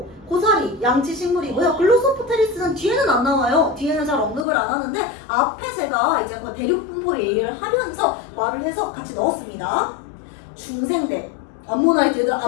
고사리 양치식물이고요. 글로소포테리스는 뒤에는 안 나와요. 뒤에는 잘 언급을 안 하는데 앞에 제가 이제 대륙분포 얘기를 하면서 말을 해서 같이 넣었습니다. 중생대 암모나이트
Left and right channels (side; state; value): right; drops out; at 4.5 s